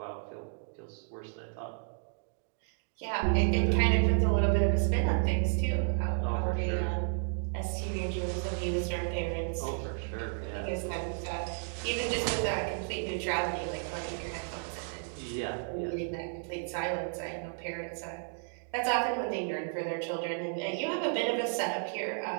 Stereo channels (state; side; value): silent; left; 56 dB below the other